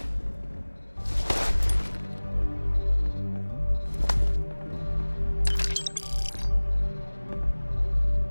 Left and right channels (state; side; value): inverted; both; correlation -1.00